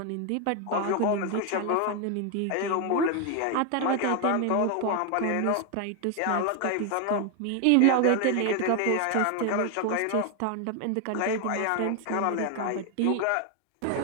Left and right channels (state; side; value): different; both; correlation 0.01